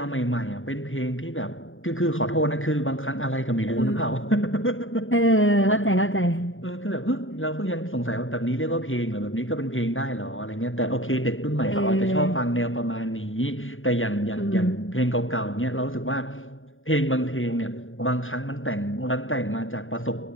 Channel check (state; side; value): late; right; 0.58 ms